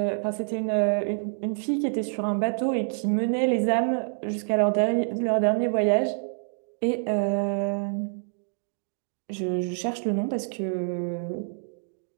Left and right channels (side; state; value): left; silent; digital silence